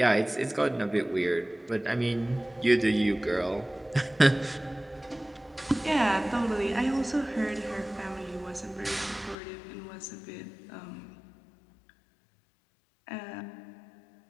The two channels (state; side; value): drops out; right; at 9.3 s